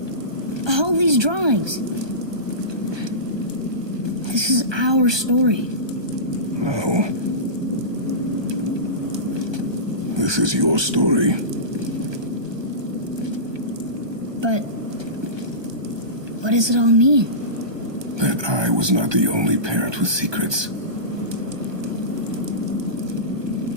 all these drawings. This is our story. No. This is your story. But what does it all mean? That I was not the only parent with secrets.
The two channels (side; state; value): left; late; 1.2 ms